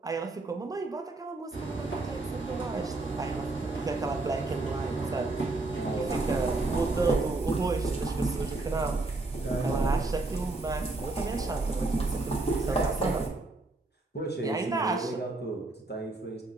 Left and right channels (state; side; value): quieter; left; 3.1 dB